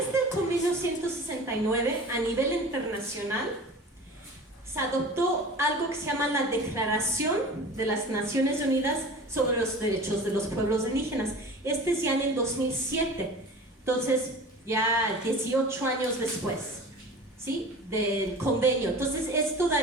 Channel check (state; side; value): normal; both; correlation 0.38